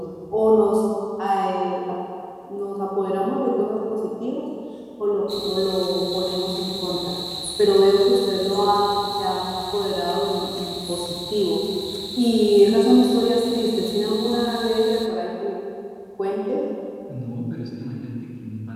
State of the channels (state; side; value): identical; both; correlation 1.00